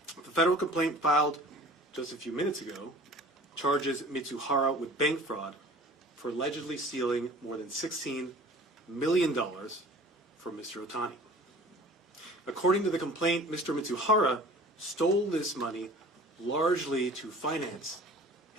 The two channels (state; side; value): normal; both; correlation 0.45